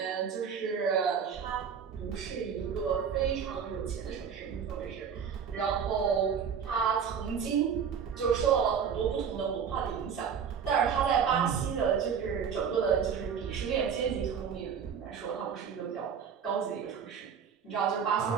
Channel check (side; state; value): left; quieter; 7.1 dB